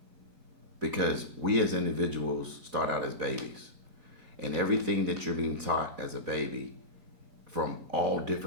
Because we as individuals start out as babies. And everything that you're being taught as a baby from all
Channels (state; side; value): late; left; 4.0 ms